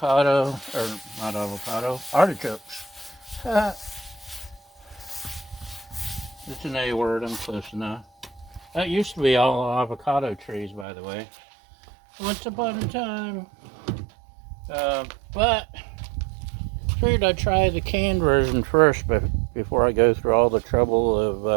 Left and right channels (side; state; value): left; drops out; at 10.9 s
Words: or not avocado, artichokes. It's an A word, I'm close enough. That used to be all avocado trees, by the way. Once upon a time. But figured I'd try the canned version first before I go through all the trouble